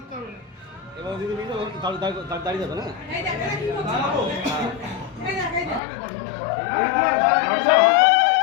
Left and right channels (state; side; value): drops out; right; at 5.8 s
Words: এবার যদি দাঁড়িয়ে যাবে না